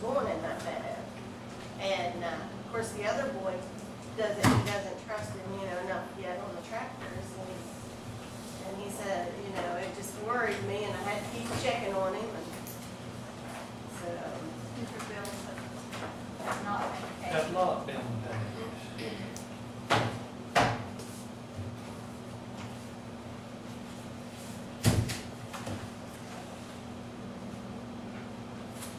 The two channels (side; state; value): both; identical; correlation 1.00